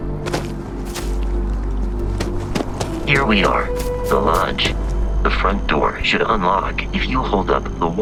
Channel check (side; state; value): both; identical; correlation 1.00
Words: Here we are, the lodge. The front door should unlock if you hold up the